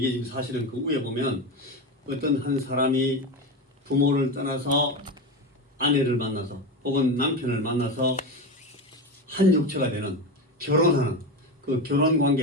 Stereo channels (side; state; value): both; normal; correlation 0.20